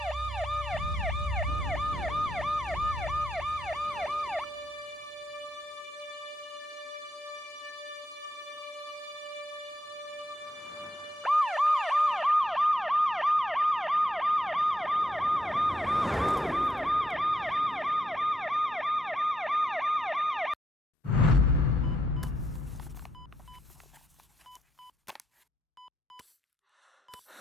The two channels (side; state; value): both; normal; correlation 0.79